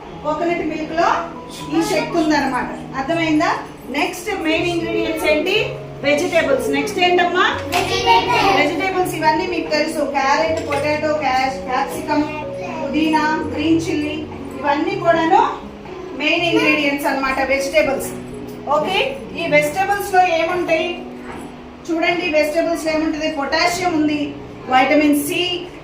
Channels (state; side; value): identical; both; correlation 1.00